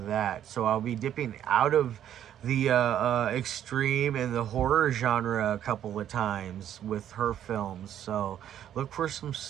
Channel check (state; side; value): quieter; left; 10.5 dB